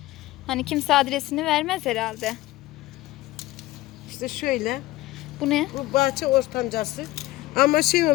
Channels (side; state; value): right; quieter; 17.7 dB